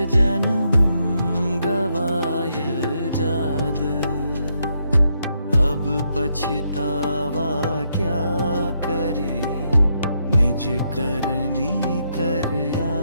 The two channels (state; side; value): inverted; both; correlation -0.78